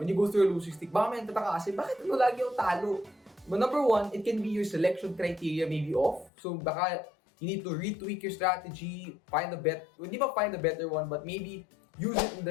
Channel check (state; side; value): drops out; right; at 6.3 s